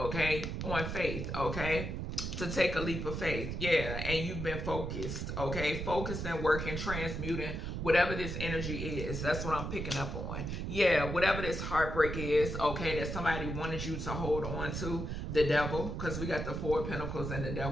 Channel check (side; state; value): right; noise; rumble, 4 dB below the sound